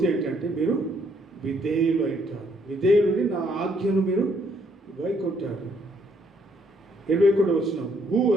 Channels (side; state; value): both; normal; correlation 0.69